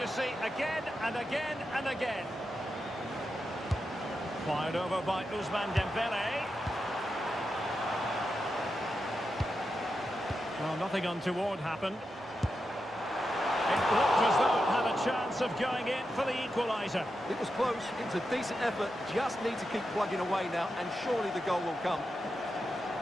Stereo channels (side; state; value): both; normal; correlation 0.88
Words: see again and again and again. Fired over by Ousmane Dembele. Well, nothing untoward happened. It looked as though it had a chance of going in for the equaliser. It was close, it was a decent effort, just need to keep plugging away now, and surely the goal will come.